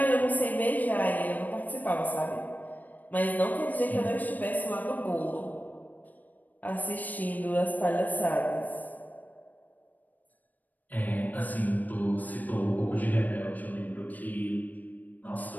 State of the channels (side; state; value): right; late; 0.082 ms